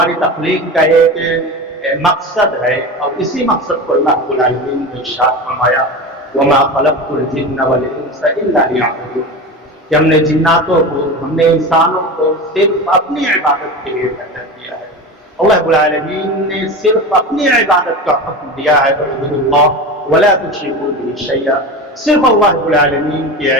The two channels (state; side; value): normal; both; correlation 0.27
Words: تخلیق کا ایک مقصد ہے اور اسی مقصد کو اللہ رب العالمین نے ارشاد فرمایا وما خلقت الجن والانس الا ليعبدون کہ ہم نے جناتوں کو ہم نے انسانوں کو صرف اپنی عبادت کے لیے پیدا کیا ہے. اللہ رب العالمین نے صرف اپنی عبادت کا حکم دیا ہے اعبدوا اللہ ولا تشركوا به شيئا. صرف اللہ رب العالمین کی